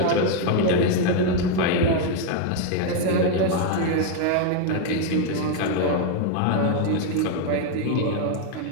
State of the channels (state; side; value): different; both; correlation 0.01